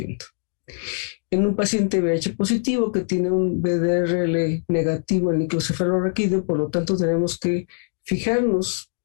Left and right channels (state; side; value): silent; right; digital silence